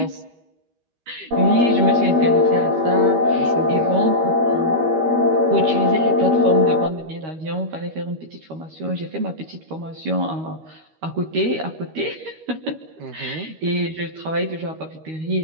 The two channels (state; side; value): late; left; 13 ms